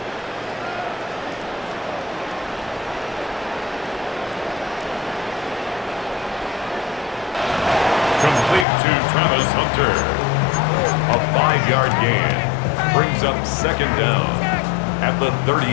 Complete to Travis Hunter. A 5-yard gain. Brings up 2nd down at the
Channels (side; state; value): right; drops out; at 8.7 s